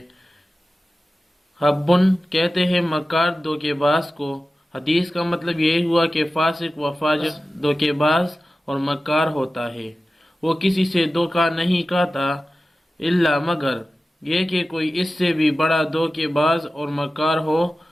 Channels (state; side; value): normal; both; correlation 0.95